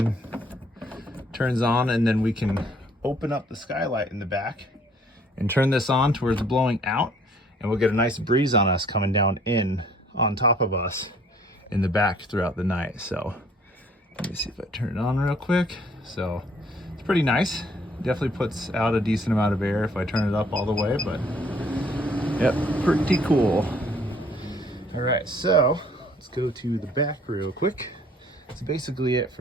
turns on, and then we can open up the skylight in the back and turn this on to where it's blowing out, and we'll get a nice breeze on us coming down in on top of us in the back throughout the night. So let me see if I turn it on real quick. So it's pretty nice. Definitely puts out a decent amount of air if I turn it up all the way, but yep, pretty cool. All right, so let's go to the back real quick. That's basically it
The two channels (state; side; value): normal; both; correlation 0.60